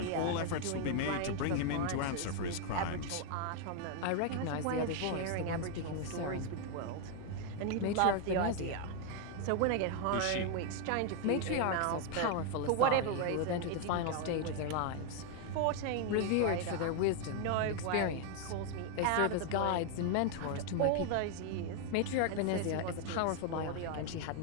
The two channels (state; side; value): different; both; correlation 0.00